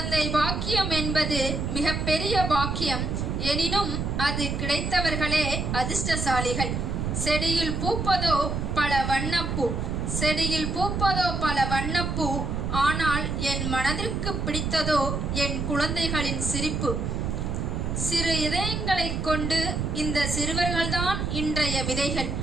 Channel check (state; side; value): noise; right; rumble, 2 dB below the sound